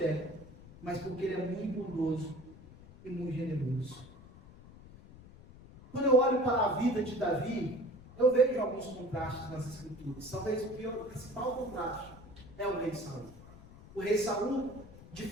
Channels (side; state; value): left; noise; rumble, 19 dB below the sound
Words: mas porque Ele é muito bondoso e muito generoso. Quando eu olho para a vida de Davi, eu vejo alguns contrastes nas Escrituras. Talvez o principal contraste é o rei Saul. O rei Saul,